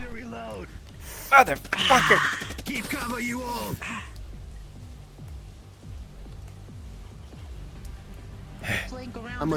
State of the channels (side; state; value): both; identical; correlation 1.00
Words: to reload. Motherfucker! Keep cover, you all. I'm